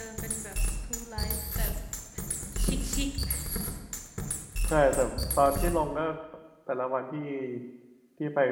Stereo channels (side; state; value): both; identical; correlation 1.00